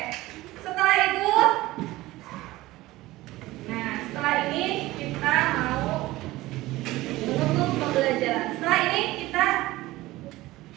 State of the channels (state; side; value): quieter; left; 18.1 dB